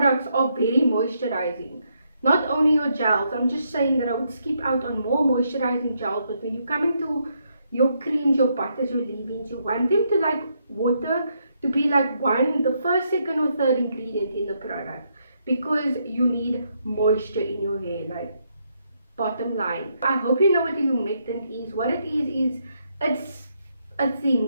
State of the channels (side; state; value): both; inverted; correlation -0.77